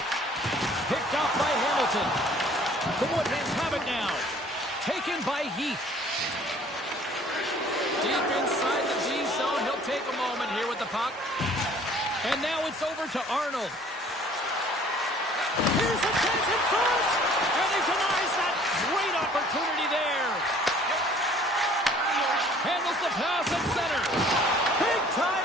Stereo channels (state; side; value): normal; both; correlation 0.54